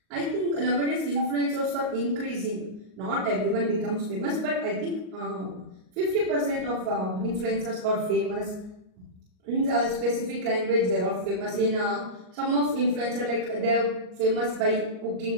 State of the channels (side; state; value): left; late; 38 ms